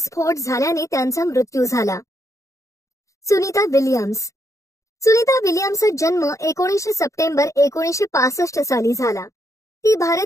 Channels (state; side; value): late; right; 0.15 ms